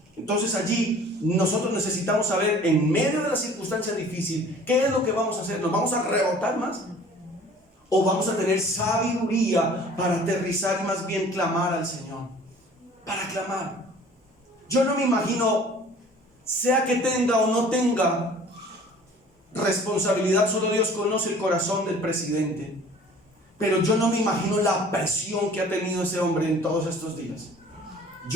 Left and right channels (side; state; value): both; normal; correlation 0.49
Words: Entonces allí nosotros necesitamos saber, en medio de la circunstancia difícil, qué es lo que vamos a hacer. ¿Nos vamos a rebotar más? ¿O vamos a tener sabiduría para aterrizar y más bien clamar al Señor? Para clamar. Yo no me imagino, sea que tenga o no tenga responsabilidad, solo Dios conoce el corazón del presidente. Pero yo no me imagino la presión que ha tenido ese hombre en todos estos días.